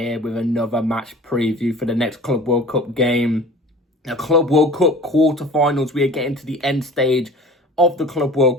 with another match preview for the next Club World Cup game. The Club World Cup quarterfinals. We are getting to the end stage of the Club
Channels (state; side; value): normal; both; correlation 0.42